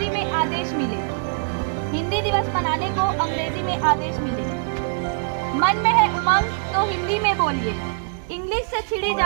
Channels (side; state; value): left; silent; digital silence